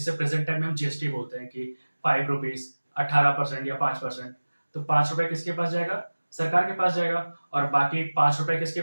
प्रेजेंट टाइम में हम जीएसटी बोलते हैं कि 5 रुपीज, 18% या 5%। तो 5 रुपए किसके पास जाएगा, सरकार के पास जाएगा। और बाकी 5 रुपए किसके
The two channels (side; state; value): both; inverted; correlation -1.00